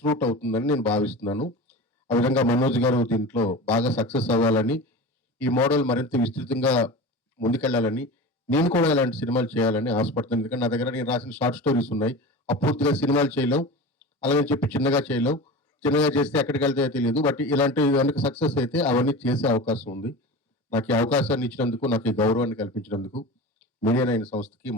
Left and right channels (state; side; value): normal; both; correlation 0.31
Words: రూట్ అవుతుందని నేను భావిస్తున్నాను. ఆ విధంగా మనోజ్ గారు దీంట్లో బాగా సక్సెస్ అవ్వాలని, ఈ మోడల్ మరింత విస్తృతంగా ముందుకెళ్ళాలని, నేను కూడా ఇలాంటి సినిమాలు చేయాలని ఆశపడుతున్నాను. ఎందుకంటే నా దగ్గర నేను రాసిన షార్ట్ స్టోరీస్ ఉన్నాయి. అపూర్తిగా సినిమాలు చేయలేం. అలాగని చెప్పి చిన్నగా చేయలేం. చిన్నగా చేస్తే ఎక్కడికెళ్తాయో తెలీదు. బట్ ఇలాంటివి గనుక సక్సెస్ అయితే అవన్నీ చేసే అవకాశం ఉంది. నాకు ఈ అవకాశాన్ని ఇచ్చినందుకు, నాకు ఈ గౌరవాన్ని కల్పించినందుకు మీడియా నైన్ సంస్థకి,